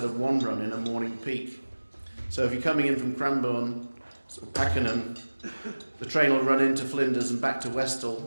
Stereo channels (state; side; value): inverted; both; correlation -1.00